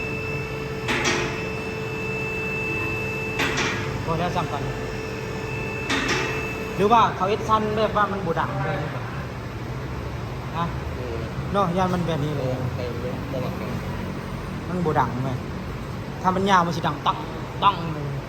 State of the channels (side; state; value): both; identical; correlation 1.00